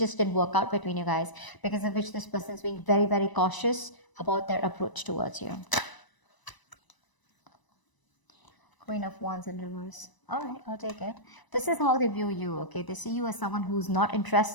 didn't work out between you guys, because of which this person is being very, very cautious about their approach towards you. Queen of Wands in reverse. All right, I'll take it. This is how they view you, okay? They see you as someone who's not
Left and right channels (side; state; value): right; late; 1.0 ms